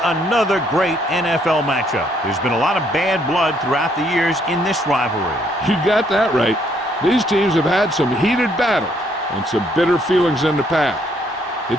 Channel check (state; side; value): normal; both; correlation 0.69